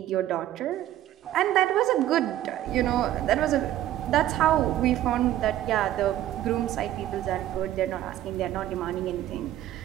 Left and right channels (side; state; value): left; quieter; 13.1 dB